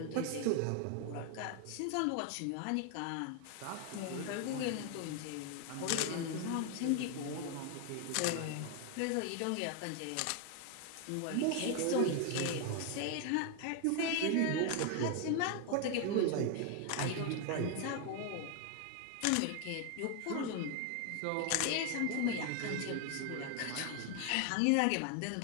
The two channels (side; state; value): both; different; correlation 0.01